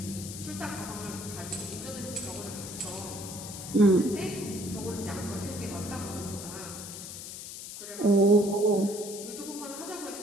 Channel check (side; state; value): left; noise; hiss, 10 dB below the sound